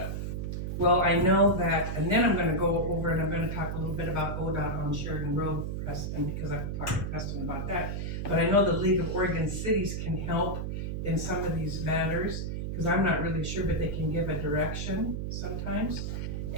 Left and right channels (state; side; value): noise; right; hum, 3 dB below the sound